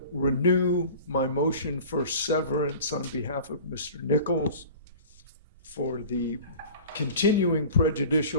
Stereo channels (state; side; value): inverted; both; correlation -0.40